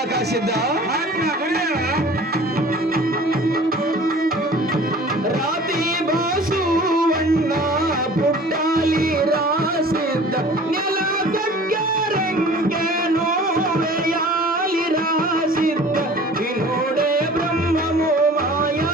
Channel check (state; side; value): normal; both; correlation 0.45